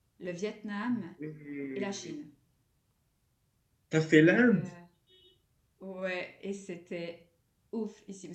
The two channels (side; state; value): both; identical; correlation 1.00